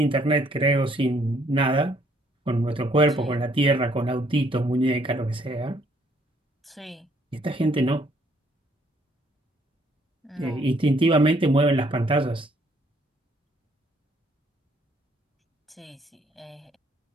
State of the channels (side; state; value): both; normal; correlation 0.66